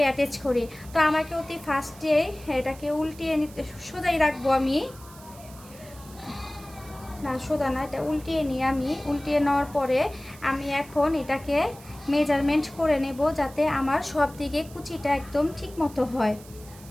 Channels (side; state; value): right; noise; hiss, 21 dB below the sound